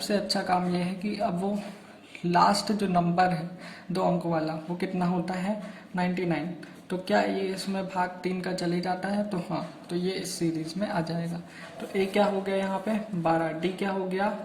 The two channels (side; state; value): both; identical; correlation 1.00